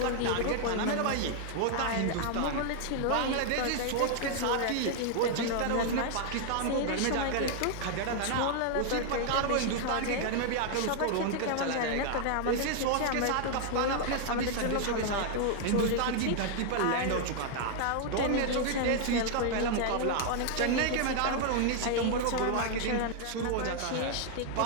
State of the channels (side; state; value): both; different; correlation 0.00